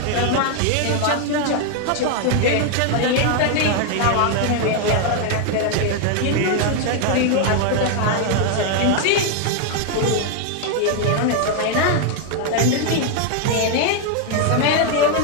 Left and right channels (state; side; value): different; both; correlation 0.00